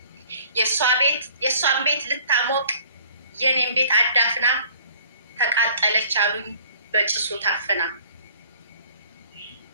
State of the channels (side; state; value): both; inverted; correlation -0.54